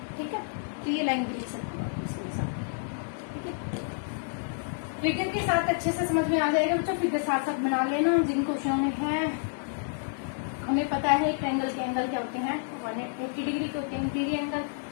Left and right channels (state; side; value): silent; right; digital silence